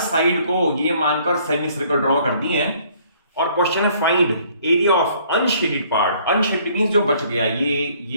को ये मानकर सेमी सर्कल ड्रॉ कर दिए हैं और क्वेश्चन है find area of unshielded part. Unshielded means जो बच गया,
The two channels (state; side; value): inverted; both; correlation -0.61